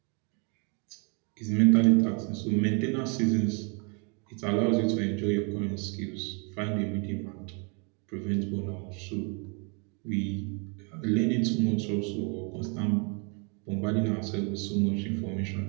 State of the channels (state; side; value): quieter; left; 35.2 dB